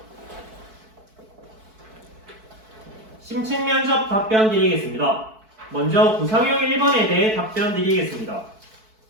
심층 면접 답변 드리겠습니다. 먼저 구상형 1번에 대해 답변 드리겠습니다.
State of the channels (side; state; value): left; late; 4.6 ms